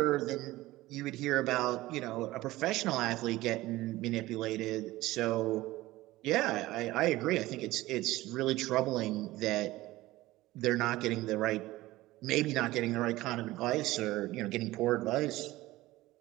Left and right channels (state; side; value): quieter; left; 17.8 dB